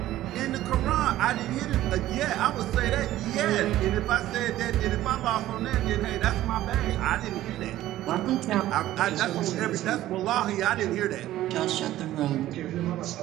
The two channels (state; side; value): quieter; left; 14.4 dB